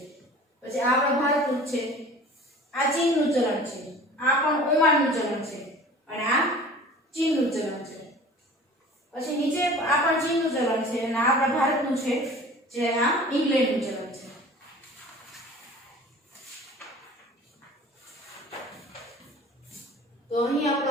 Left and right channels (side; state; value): both; normal; correlation 0.43